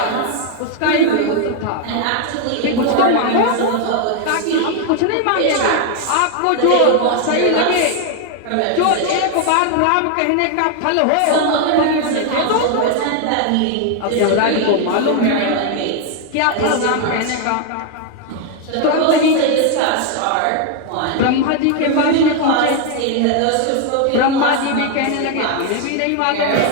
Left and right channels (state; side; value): different; both; correlation 0.00